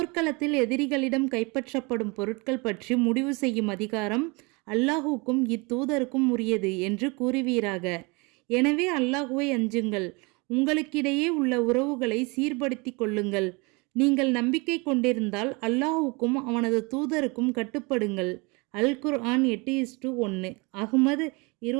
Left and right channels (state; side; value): quieter; left; 28.1 dB